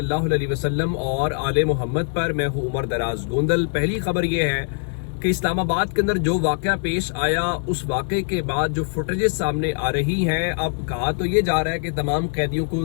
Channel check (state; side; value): silent; right; 56 dB below the other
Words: अलैहि वसल्लम और आले मोहम्मद पर। मैं हूँ उमर दराज गोंदल। पहली खबर ये है कि इस्लामाबाद के अंदर जो वाक़या पेश आया, उस वाक़े के बाद जो फुटेजेस सामने आ रही हैं, अब कहा तो ये जा रहा है कि तमाम कैदियों